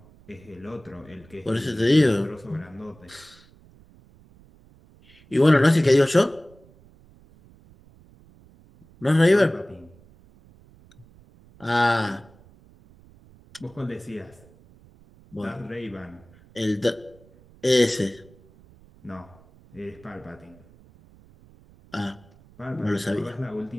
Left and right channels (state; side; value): noise; right; rumble, 26 dB below the sound